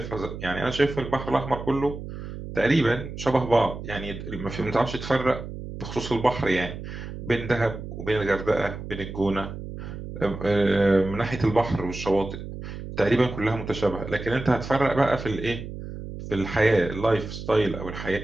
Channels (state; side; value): noise; right; hum, 9 dB below the sound